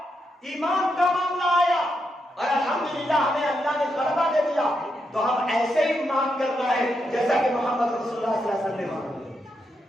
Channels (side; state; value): both; normal; correlation 0.82